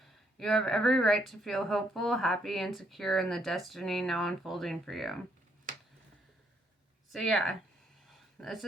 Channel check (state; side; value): normal; both; correlation 0.71